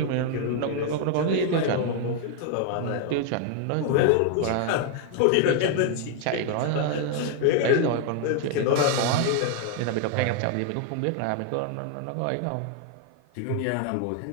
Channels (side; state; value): both; different; correlation 0.01